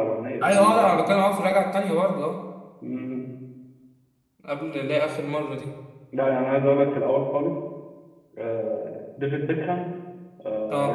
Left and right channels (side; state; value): both; identical; correlation 1.00